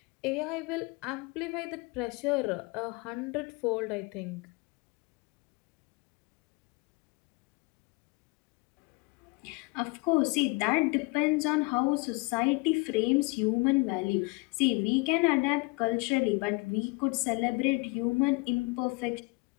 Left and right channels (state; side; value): quieter; right; 27.3 dB